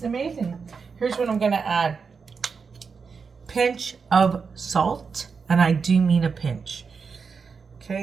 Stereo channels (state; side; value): quieter; left; 5.4 dB